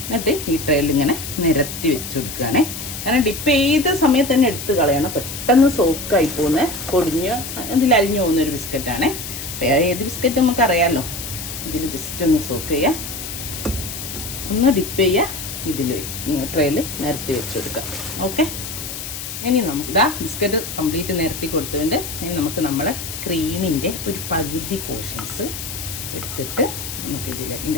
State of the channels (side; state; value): left; noise; hiss, 8 dB below the sound